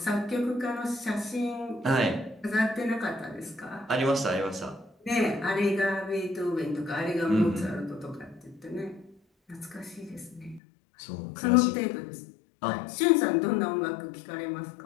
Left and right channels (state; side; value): drops out; right; at 10.6 s